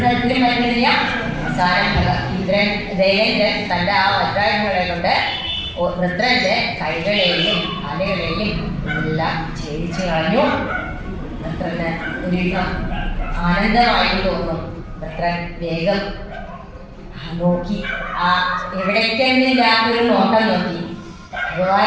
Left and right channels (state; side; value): identical; both; correlation 1.00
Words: തരത്തിലും പറ്റുന്നില്ല. അവസാനം ദേവേന്ദ്രൻ തൻ്റെ ആ വജ്രായുധങ്ങളെ കൊണ്ട് വൃത്രന്റെ കൈകളെയും കാലുകളെയും എല്ലാം ഛേദിച്ചു കളഞ്ഞു. വൃത്രന് ഒരുവിധം ആനന്ദമായി തോന്നുന്നു. വൃത്രൻ വേഗം നോക്കി, ആ എവിടേക്കെന്നില്ലാത്തൊരു നോട്ടം നോക്കി.